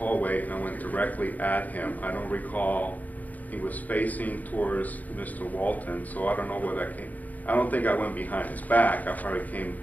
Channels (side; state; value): right; late; 0.078 ms